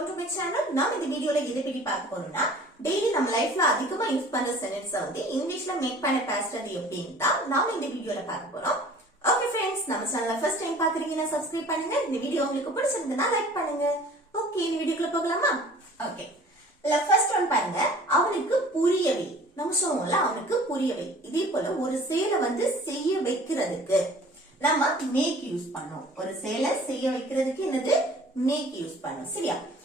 to my channel. நாம் இந்த வீடியோல எதை பத்தி பார்க்க போறோம்னா டெய்லி நம்ம லைஃப்ல அதிகமா யூஸ் பண்ற சென்டென்ஸ் வந்து இங்கிலீஷ்ல மேக் பண்ண பேசுறது எப்படின்னு தான் நாம இந்த வீடியோல பார்க்க போறோம். ஓகே ஃப்ரெண்ட்ஸ், நம்ம சேனலை ஃபர்ஸ்ட் டைம் பாக்குறீங்கன்னா சப்ஸ்கிரைப் பண்ணுங்க. இந்த வீடியோ உங்களுக்கு பிடிச்சிருந்தா லைக் பண்ணுங்க. ஓகே, இந்த வீடியோக்குள்ள போகலாமா? ஓகே, இல்ல ஃபர்ஸ்ட் ஒன் பாருங்க. அவனுக்கு புரியவை. நம்ம சொல்லுவோம்ல அவனுக்கு புரியவை. இதே போல ஒரு செயலை வந்து செய்ய வைக்கிறதுக்கு நம்ம மேக் யூஸ் பண்ணோம். ஒரு செயலை செய்ய வைக்கிறதுக்கு என்னது மேக் யூஸ் பண்ணோம். சரியா?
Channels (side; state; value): both; normal; correlation 0.48